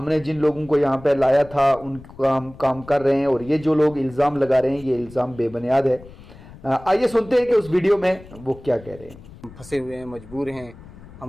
जिन लोगों को यहाँ पे लाया था उनका हम काम कर रहे हैं और ये जो लोग इल्ज़ाम लगा रहे हैं ये इल्ज़ाम बेबुनियाद है। आइए सुनते हैं कि उस वीडियो में वो क्या कह रहे हैं। फंसे हुए हैं, मजबूर हैं,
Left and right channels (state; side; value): noise; left; rumble, 19 dB below the sound